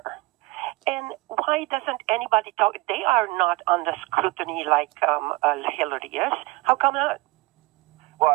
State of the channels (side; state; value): left; quieter; 22.1 dB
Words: And why doesn't anybody talk? They are not under scrutiny like Hillary is. How come not? Well,